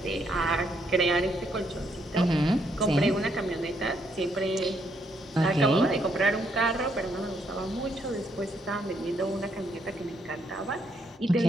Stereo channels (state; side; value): normal; both; correlation 0.74